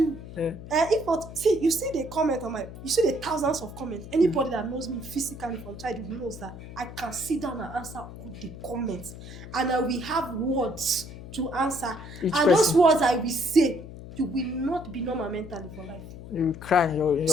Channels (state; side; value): noise; left; hum, 13 dB below the sound